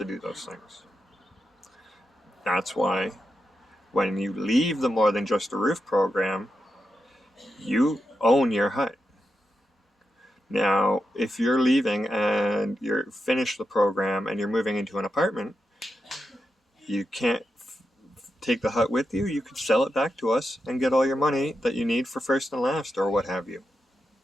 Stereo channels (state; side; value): normal; both; correlation 0.87